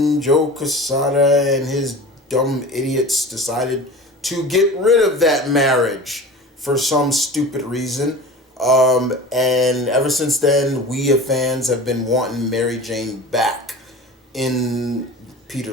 Joe Quesada and his dumb idiots decided to get rid of that marriage for some stupid reason. And ever since then, we as fans have been wanting Mary Jane back in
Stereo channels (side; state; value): both; normal; correlation 0.36